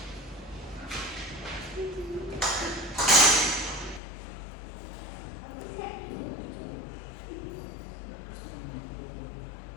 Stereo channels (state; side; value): drops out; right; at 4.0 s